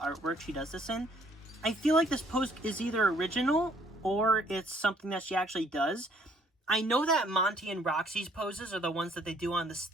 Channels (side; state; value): both; normal; correlation 0.63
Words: she does this in. I feel like this pose is either original or it's something that she actually does. I know that Monty and Roxy's poses are the ones that they do on